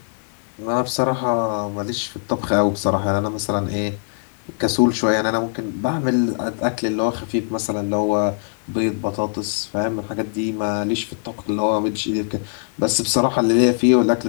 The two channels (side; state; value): right; silent; digital silence